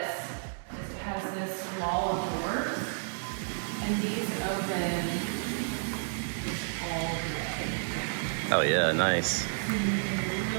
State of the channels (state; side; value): silent; left; digital silence